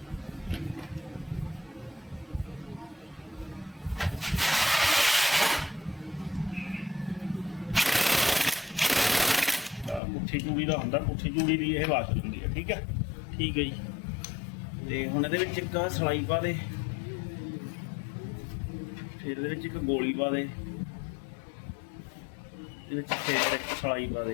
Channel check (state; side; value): drops out; right; at 10.0 s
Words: ਪੁੱਠੀ ਚੂੜੀ ਦਾ ਹੁੰਦਾ, ਪੁੱਠੀ ਚੂੜੀ ਦੀ ਇਹ ਬਾਸਲ ਹੁੰਦੀ ਹੈ। ਠੀਕ ਹੈ ਠੀਕ ਹੈ ਜੀ। ਤੇ ਹੁਣ ਇਹਦੇ ਵਿੱਚ ਇੱਕ ਸਲਾਈ ਪਾ ਦੇ, ਫਿਰ ਇਹਦੇ ਵਿੱਚ ਇੱਕ ਗੋਲੀ ਪਾ ਦੇ, ਇਹਦੇ ਵਿੱਚ ਫਿਰ ਇੱਕ ਸਲਾਈ ਪਾ